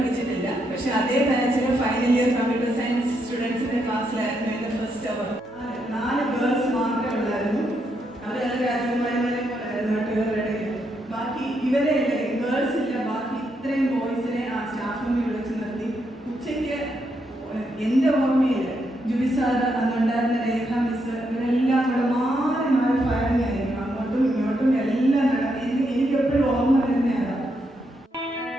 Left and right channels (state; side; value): normal; both; correlation 0.79